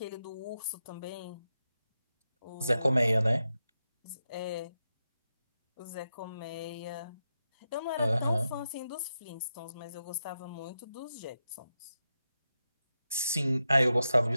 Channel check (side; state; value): both; inverted; correlation -0.88